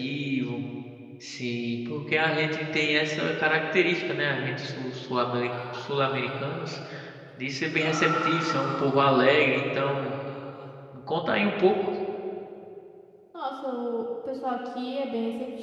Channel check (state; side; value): identical; both; correlation 1.00